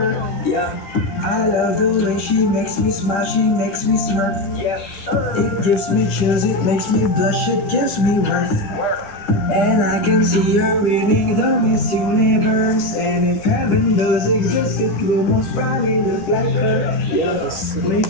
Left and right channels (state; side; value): late; right; 10 ms